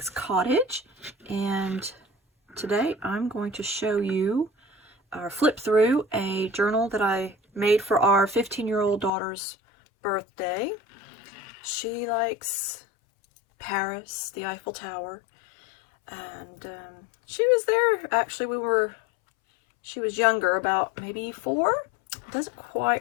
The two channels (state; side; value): drops out; right; at 9.1 s